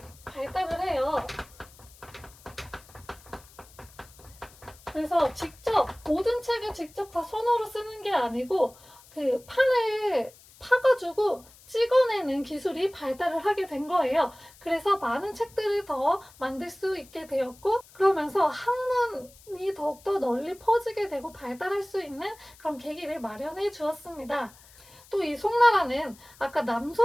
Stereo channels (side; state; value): left; noise; hiss, 24 dB below the sound